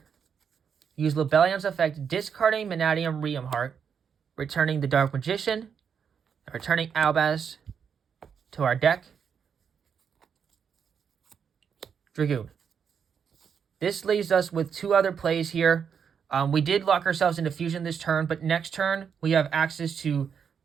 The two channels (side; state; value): left; quieter; 7.1 dB